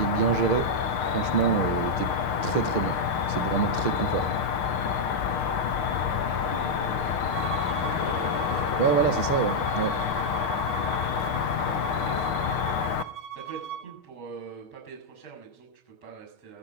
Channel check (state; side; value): late; right; 7.3 ms